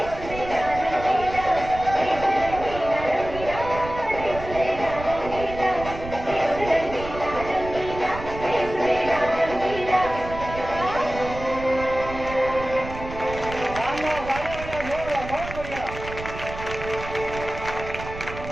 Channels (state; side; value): noise; right; rumble, 11 dB below the sound